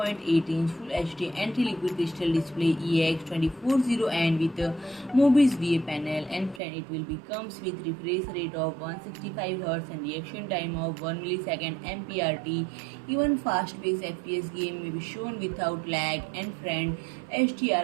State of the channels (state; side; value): drops out; left; at 6.6 s